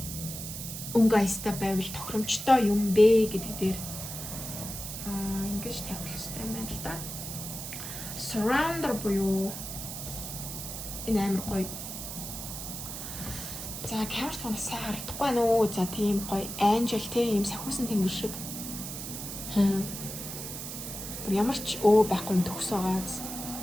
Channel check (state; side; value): noise; right; hiss, 7 dB below the sound